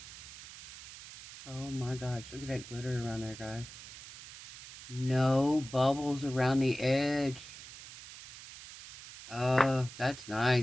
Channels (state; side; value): noise; right; hiss, 15 dB below the sound